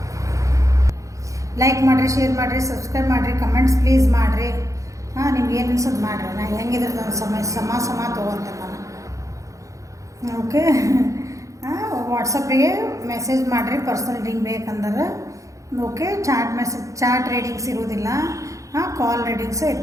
ಲೈಕ್ ಮಾಡಿರಿ, ಶೇರ್ ಮಾಡಿರಿ, ಸಬ್ಸ್ಕ್ರೈಬ್ ಮಾಡಿರಿ, ಕಮೆಂಟ್ಸ್ ಪ್ಲೀಸ್ ಮಾಡಿರಿ. ನಿಮ್ಗೆ ಏನು ಅನ್ಸೋದು ಮಾಡಿರಿ. ನಾನು ಹೆಂಗಿದ್ರೆ ನನ್ನ ಸಮ ತೊಗೊಳ್ತೇನೆ ನಾನು. ಓಕೆ, ವಾಟ್ಸಪ್ಪಿಗೆ ಮೆಸೇಜ್ ಮಾಡಿರಿ ಪರ್ಸನಲ್ ರೀಡಿಂಗ್ ಬೇಕಂದ್ರೆ. ಓಕೆ, ಚಾಟ್ ರೀಡಿಂಗ್ಸ್ ಇರೋದಿಲ್ಲ, ಕಾಲ್ ರೀಡಿಂಗ್ಸೇ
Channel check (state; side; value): late; left; 0.15 ms